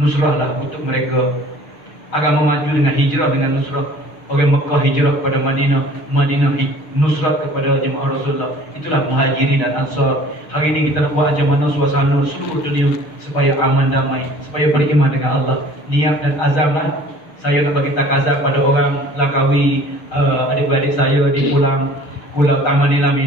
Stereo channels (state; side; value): late; right; 6.7 ms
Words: untuk mereka. Agama maju dengan hijrah, dengan nusrah. Orang Mekah hijrah kepada Madinah, Madinah nusrat kepada jemaah Rasulullah. Itulah muhajirin dan ansar. Hari ini kita nak buat macam mana suasana seluruh dunia supaya aman damai, supaya beriman dengan Allah. Niat dan azamlah. Saya nak bagi takazah pada orang Langkawi, adik-beradik saya di Pulau Taman Nilam